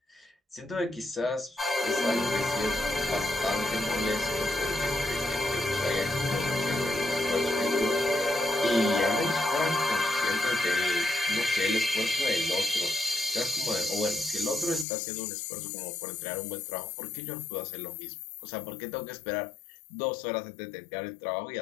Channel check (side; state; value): right; drops out; at 14.9 s